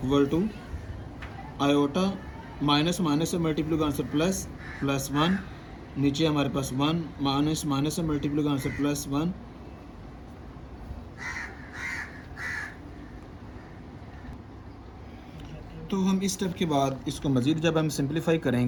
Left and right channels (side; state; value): both; identical; correlation 1.00